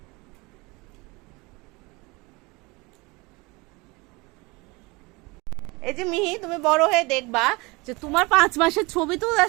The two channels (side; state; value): left; quieter; 25.2 dB